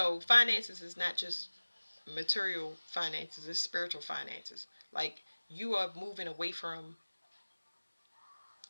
finances is not just material finances, it's spiritual finances. Like, you are moving away from,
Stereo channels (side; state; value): both; inverted; correlation -1.00